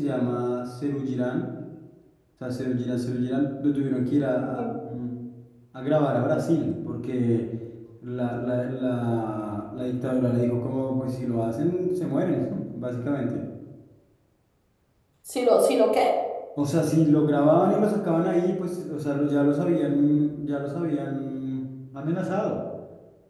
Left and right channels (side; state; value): both; identical; correlation 1.00